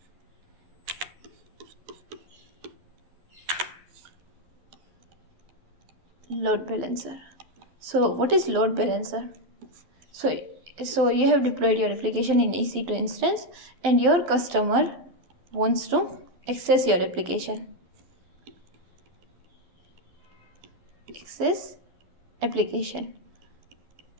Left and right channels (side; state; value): left; late; 11 ms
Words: Load balancer. So what is load balancer? So you have deployed your application in EC2 instance and your customer wants to access your application.